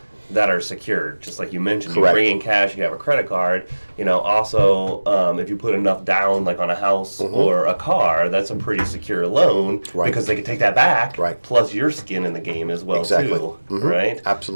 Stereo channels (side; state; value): both; inverted; correlation -1.00